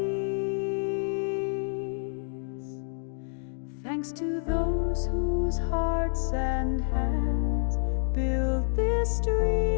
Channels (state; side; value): silent; right; digital silence